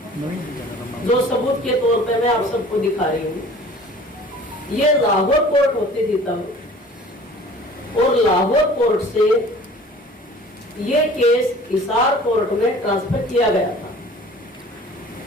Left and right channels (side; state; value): both; normal; correlation 0.47